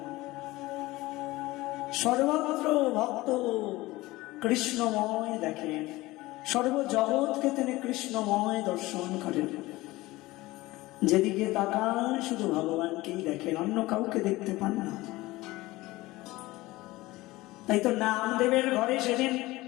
সর্বত্র ভক্ত কৃষ্ণময় দেখেন, সর্বজগৎকে তিনি কৃষ্ণময় দর্শন করেন। যেদিকে তাকান শুধু ভগবানকেই দেখেন, অন্য কাউকে দেখতে পান না। তাই তো নামদেবের ঘরে সেদিন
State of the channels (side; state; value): right; quieter; 19.4 dB